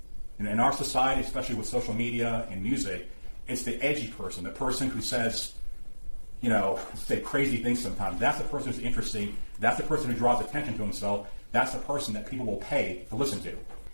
In our society, especially with social media and music, it's the edgy person, the person who says, say crazy things sometimes. That's the person who's interesting. That's the person who draws attention to himself. That's the person that people will pay to listen to.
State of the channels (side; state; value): both; inverted; correlation -1.00